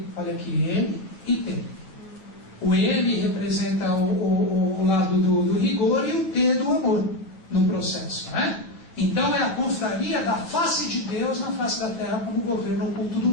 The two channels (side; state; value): right; late; 8.9 ms